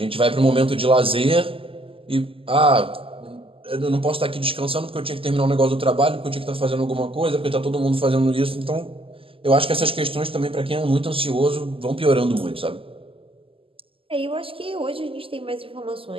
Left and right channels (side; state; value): left; late; 0.26 ms